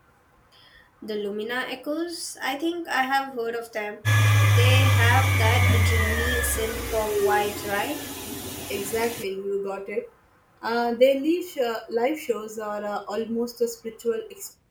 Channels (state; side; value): identical; both; correlation 1.00